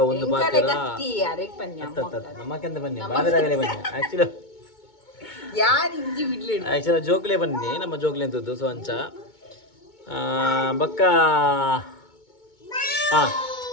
ಒಂದು ಪಾತ್ರ ನಮ್ಮಕ್ಕೆಂತ ಬನ್ನಿ ಬಾದರಾಗಲೇ ಬನ್ನಿ ಆಕ್ಚುಲಿ ಜೋಕ್ಲೆ ಬನ್ನಿ ನಮ್ಮ ಜೋಕ್ಲೆ ಅಂತದ್ದು ಸೊ ಅಂಚ ಬಕ್ಕ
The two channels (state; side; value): late; right; 2.2 ms